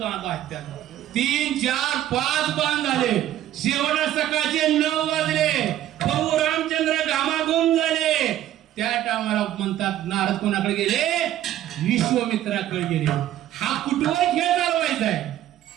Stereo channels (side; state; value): left; quieter; 12.6 dB